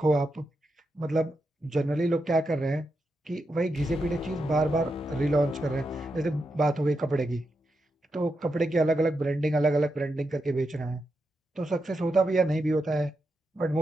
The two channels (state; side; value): normal; both; correlation 0.86